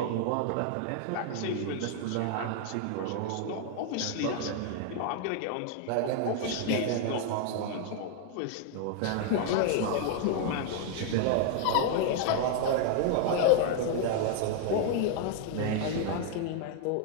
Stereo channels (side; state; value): both; different; correlation 0.00